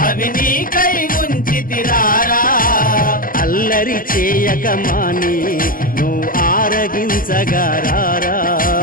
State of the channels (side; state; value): right; late; 0.41 ms